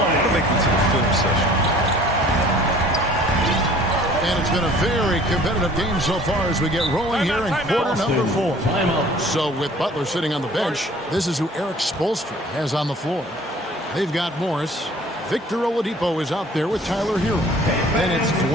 make it to the film session. And it's been a very competitive game so far as we get rolling here in quarter number 4. So with Butler sitting on the bench, this is who Eric Spoelstra has on the floor. They've got Morris. Victor Oladipo is out there with Tyler Hero. Then it's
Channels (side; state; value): both; normal; correlation 0.51